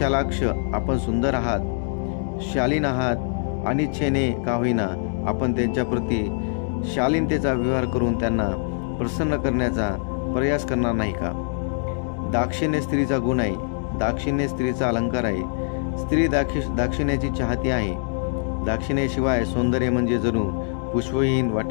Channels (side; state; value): right; silent; digital silence